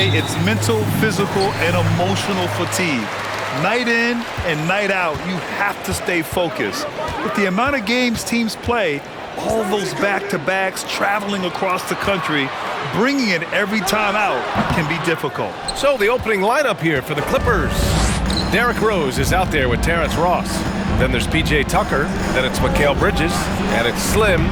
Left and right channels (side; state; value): both; identical; correlation 1.00